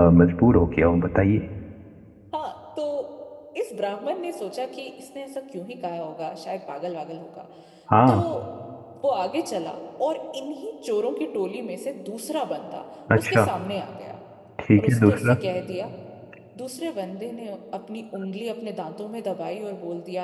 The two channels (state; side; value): identical; both; correlation 1.00